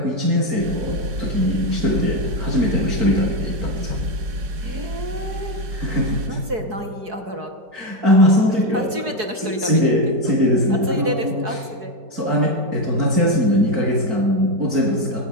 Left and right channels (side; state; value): left; late; 4.7 ms